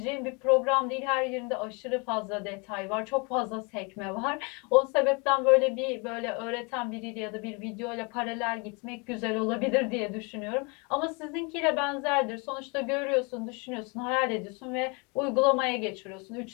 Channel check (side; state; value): right; quieter; 31.0 dB